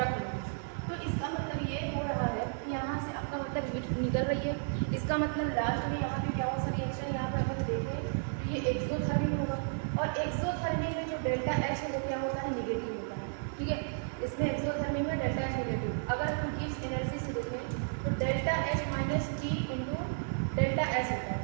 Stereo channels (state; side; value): silent; left; digital silence